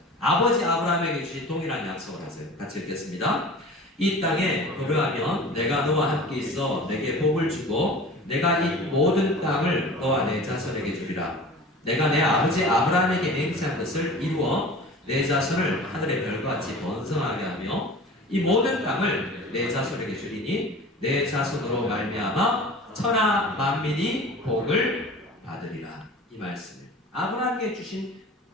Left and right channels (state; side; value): normal; both; correlation 0.39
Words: 아버지 아브라함에게 주신 동일한 약속을 하세요. 같이 읽겠습니다. 이 땅에 거류하면 내가 너와 함께 있어 내게 복을 주고 내가 이 모든 땅을 너와 내 자손에게 주리라. 내가 내 아버지 아브라함에게 맹세한 것을 이루어 내 자손을 하늘의 별과 같이 번성하게 하며 이 모든 땅을 내 자손에게 주리니 내 자손으로 말미암아 천하 만민이 복을 받으리라. 이 말씀을 아브라함에게 주신